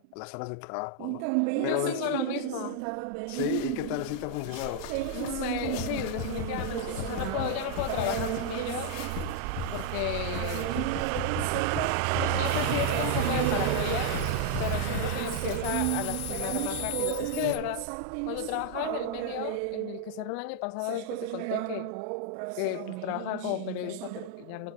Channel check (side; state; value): both; different; correlation 0.00